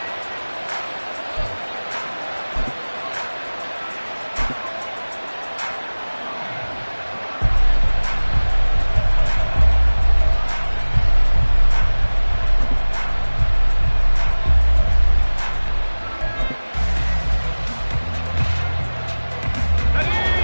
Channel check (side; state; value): both; inverted; correlation -1.00